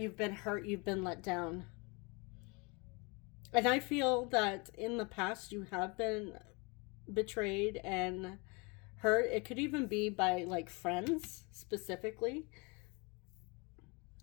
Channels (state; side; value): quieter; right; 29.6 dB